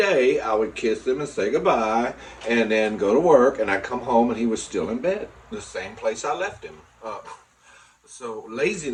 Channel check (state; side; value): identical; both; correlation 1.00